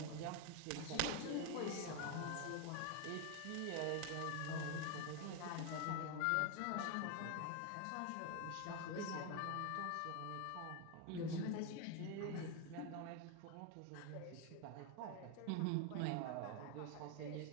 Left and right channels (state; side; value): different; both; correlation 0.01